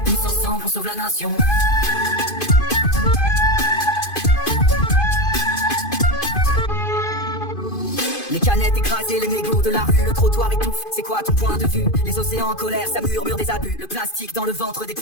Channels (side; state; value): right; late; 2.5 ms